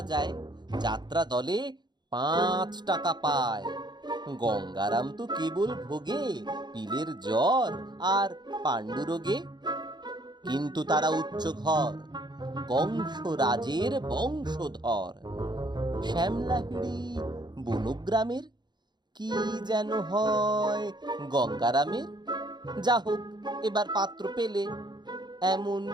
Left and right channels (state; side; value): late; left; 0.21 ms